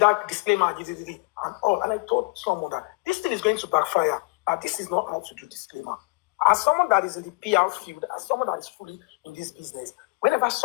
disclaimer and all. And I told someone that this thing is going to backfire. This is not how to do disclaimer. As someone that is in the PR field, as someone that is fully in this business, whenever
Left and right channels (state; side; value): quieter; right; 27.8 dB